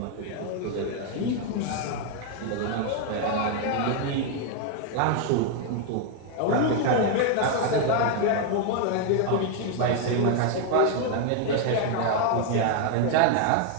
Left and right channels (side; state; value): both; different; correlation 0.01